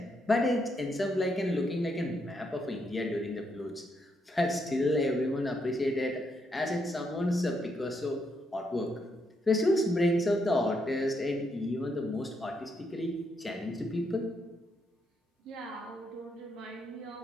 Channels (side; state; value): both; normal; correlation 0.78